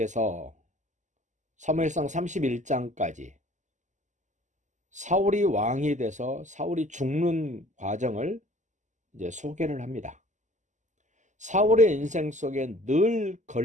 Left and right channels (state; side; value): late; left; 0.35 ms